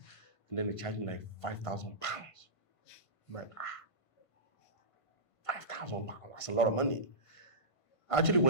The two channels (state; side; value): late; right; 1.5 ms